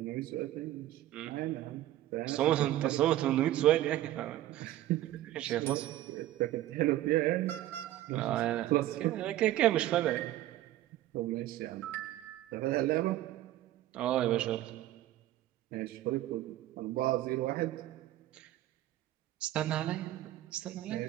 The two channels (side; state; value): left; quieter; 14.3 dB